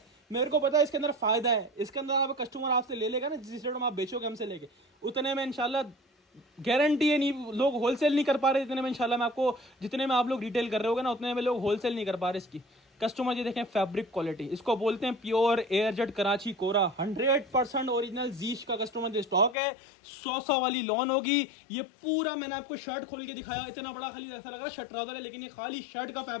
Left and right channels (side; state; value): right; drops out; at 19.6 s